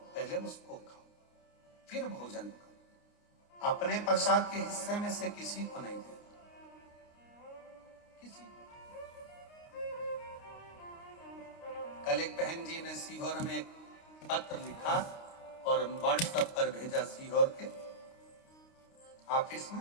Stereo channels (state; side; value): late; right; 29 ms